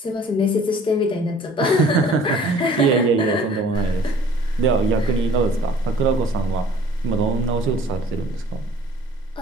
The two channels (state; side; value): normal; both; correlation 0.52